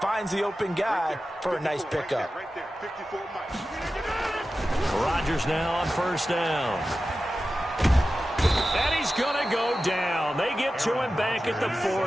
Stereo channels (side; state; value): both; normal; correlation 0.93